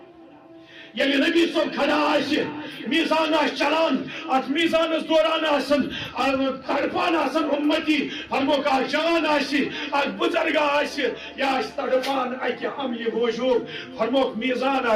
یعنی نبی صاحب کھڑا آس میزان آس چلان ات میزانس دوران آسن تڑپان آسن امتی فرمو کہ جان آس بزرگ آس یا آس تڑپان اکہ عملی موجود فرمو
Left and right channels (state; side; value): identical; both; correlation 1.00